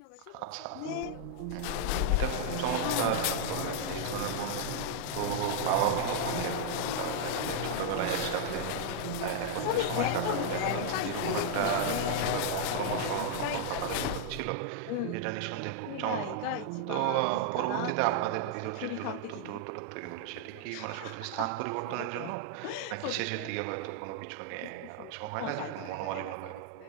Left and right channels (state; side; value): different; both; correlation -0.01